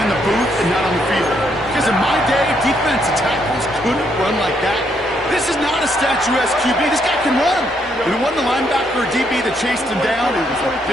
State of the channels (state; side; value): normal; both; correlation 0.74